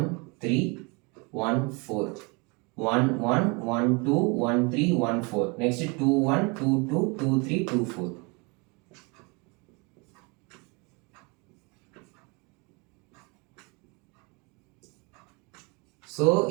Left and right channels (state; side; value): quieter; left; 30.0 dB